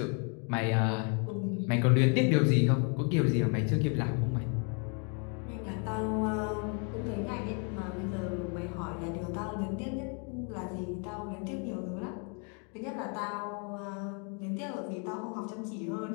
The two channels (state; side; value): quieter; right; 38.1 dB